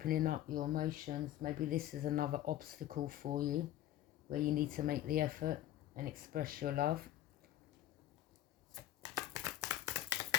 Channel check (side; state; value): right; quieter; 13.3 dB